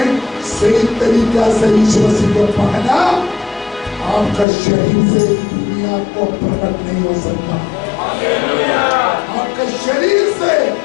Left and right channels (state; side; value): drops out; right; at 4.5 s